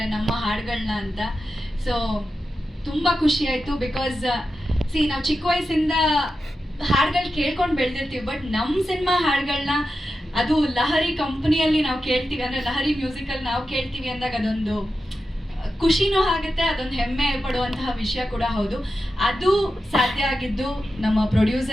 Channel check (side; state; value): both; normal; correlation 0.91